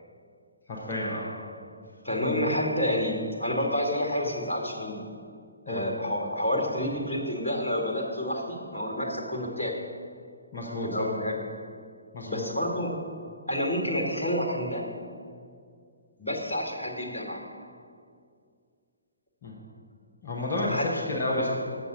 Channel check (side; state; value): both; inverted; correlation -0.50